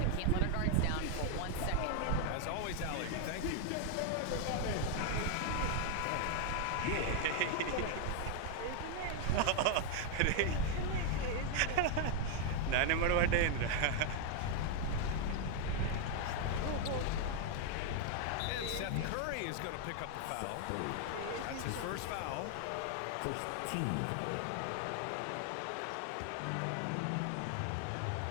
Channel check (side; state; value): both; different; correlation 0.00